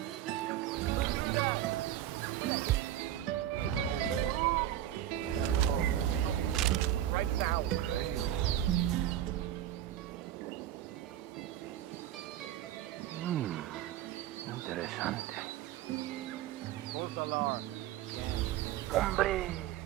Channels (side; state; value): left; quieter; 12.2 dB